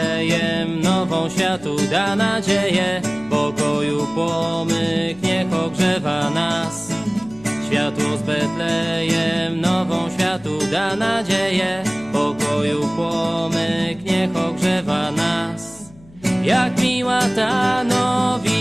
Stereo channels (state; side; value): noise; left; hum, 24 dB below the sound